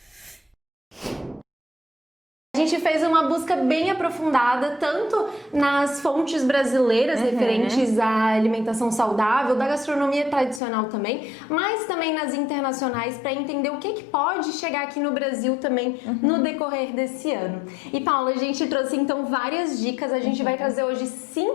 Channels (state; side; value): drops out; right; at 10.6 s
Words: A gente fez uma busca bem aprofundada, tanto nas fontes brasileiras referentes à alimentação saudável, da gastronomia tradicional também, mas também nas internacionais, para entender o que pode chegar aqui no Brasil também no decorrer desse ano. E Paula, a gente trouxe então várias dicas, a gente vai trazer hoje